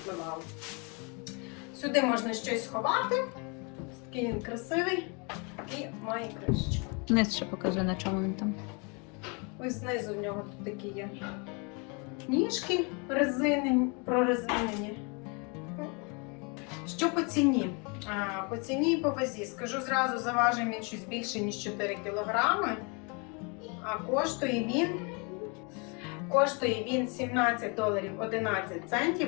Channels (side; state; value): right; quieter; 32.8 dB